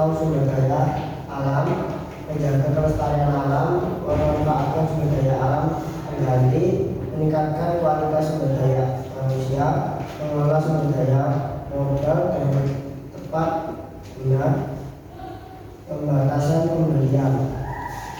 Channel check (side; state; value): both; identical; correlation 1.00